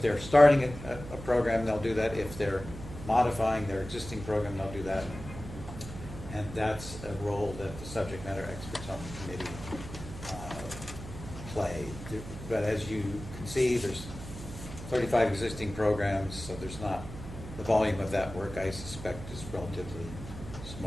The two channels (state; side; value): noise; right; hum, 11 dB below the sound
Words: they're starting a program, they'll do that. If they're modifying their existing program, they'll do that. And that's a role that the subject matter experts on the committee play. But as you can see, there's 35 existing programs, so there's not, the volume of that work I suspect is relatively